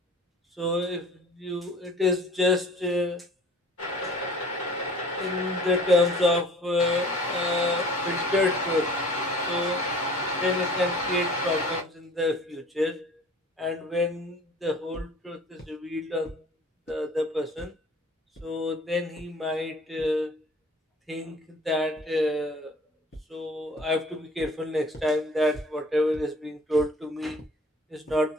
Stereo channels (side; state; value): both; normal; correlation 0.48